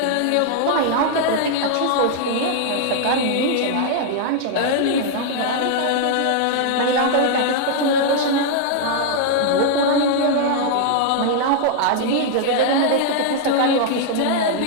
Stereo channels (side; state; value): both; different; correlation -0.01